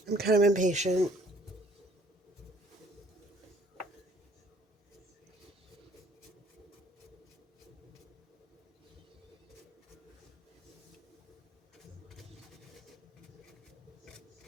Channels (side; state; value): both; normal; correlation 0.59